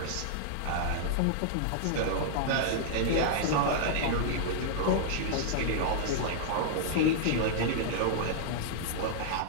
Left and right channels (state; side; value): different; both; correlation -0.01